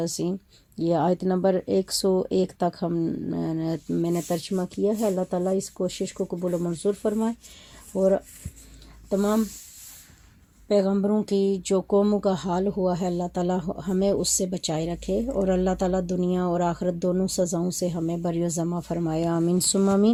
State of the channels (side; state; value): both; identical; correlation 1.00